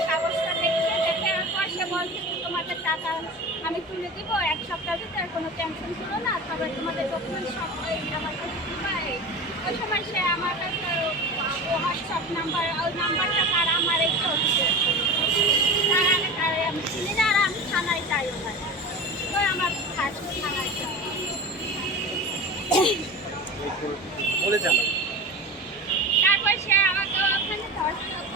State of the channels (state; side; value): normal; both; correlation 0.30